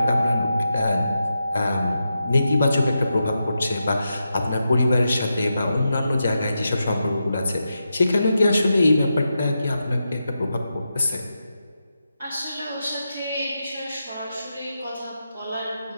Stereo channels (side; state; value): both; inverted; correlation -0.88